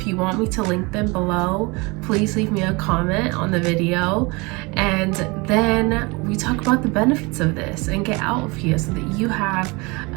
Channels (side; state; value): left; quieter; 26.4 dB